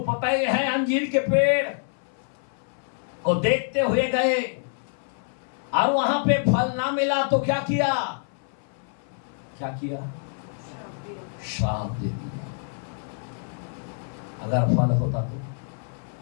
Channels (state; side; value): silent; right; 58 dB below the other